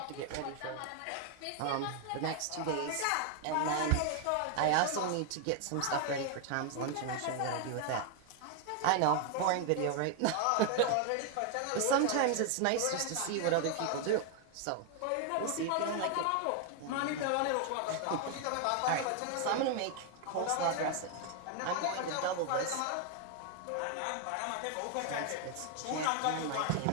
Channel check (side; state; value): both; different; correlation 0.00